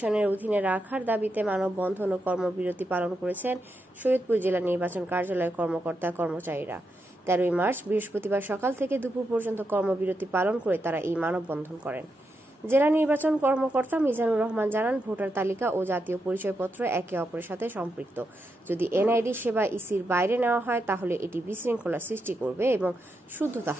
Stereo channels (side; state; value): both; normal; correlation 0.85